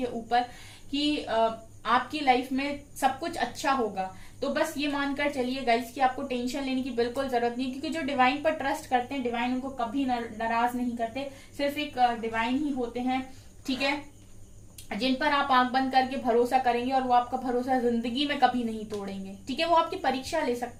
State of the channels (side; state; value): both; identical; correlation 1.00